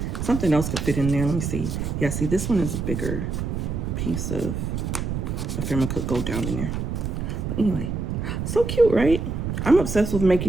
something else could fit in there. Let me see. Yeah, see, this one is a bigger piece of ephemera, could go down in there. But anyway, so cute, right? I'm obsessed with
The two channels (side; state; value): right; noise; rumble, 3 dB below the sound